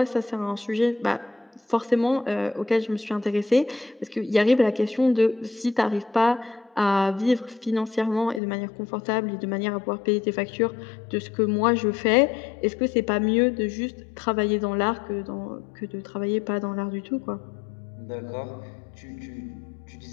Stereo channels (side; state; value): right; drops out; at 8.4 s